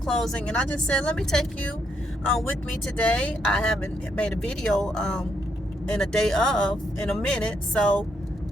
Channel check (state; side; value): normal; both; correlation 0.76